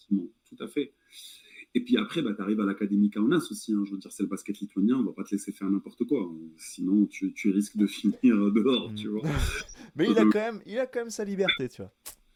Tout à fait. Et puis après, tu arrives à l'Académie Kaunas aussi. Hein. Je veux dire, c'est le basket lituanien, on va pas te laisser faire n'importe quoi. Sinon, tu risques de finir dehors, tu vois. Mais il a quand même sa liberté, tu vois.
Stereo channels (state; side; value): identical; both; correlation 1.00